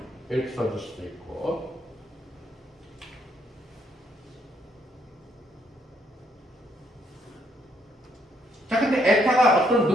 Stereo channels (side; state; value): both; normal; correlation 0.72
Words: 이렇게 써줄 수도 있고. 자, 근데 에타가 어떤